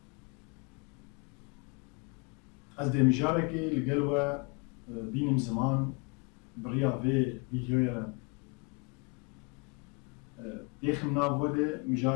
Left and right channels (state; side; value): quieter; right; 33.2 dB